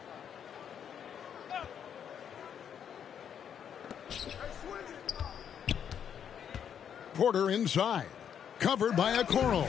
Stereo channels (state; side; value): quieter; right; 8.4 dB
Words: Porter inside. Covered by Okoro.